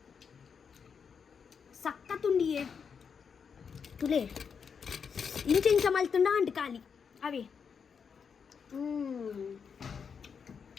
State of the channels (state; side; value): quieter; right; 6.4 dB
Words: ಸಕ್ಕತ್ತುಂಡಿಯೇ ತುಲೆ ಇಂಚ ಮಲ್ತುಂಡ ಅಂಟು ಖಾಲಿ ಅವೇ